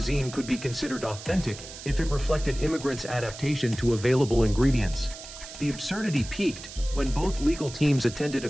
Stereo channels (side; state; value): right; noise; hiss, 13 dB below the sound